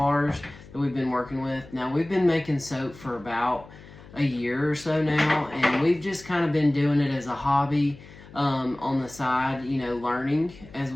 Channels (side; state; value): left; noise; hum, 20 dB below the sound